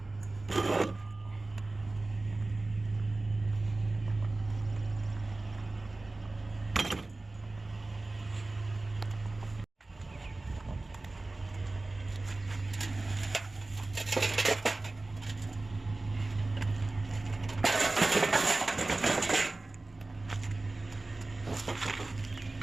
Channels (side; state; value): left; quieter; 3.1 dB